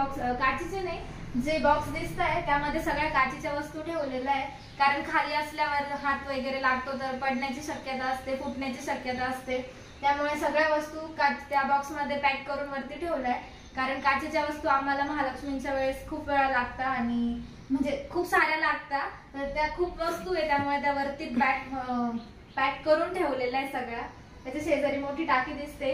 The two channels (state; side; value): identical; both; correlation 1.00